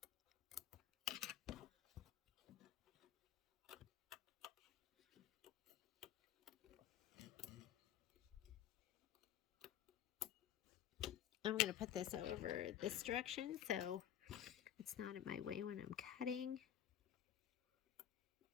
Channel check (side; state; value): right; quieter; 10.9 dB